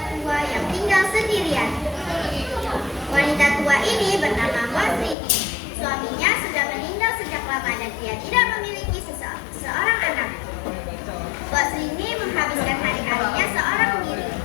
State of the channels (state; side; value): drops out; right; at 5.2 s